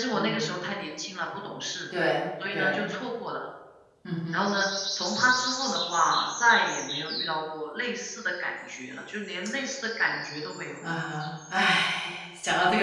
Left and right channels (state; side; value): identical; both; correlation 1.00